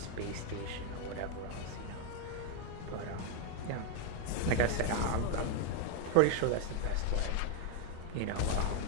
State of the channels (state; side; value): different; both; correlation 0.01